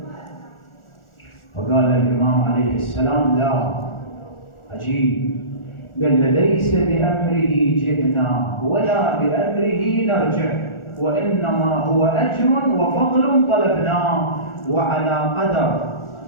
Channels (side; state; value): right; late; 1.4 ms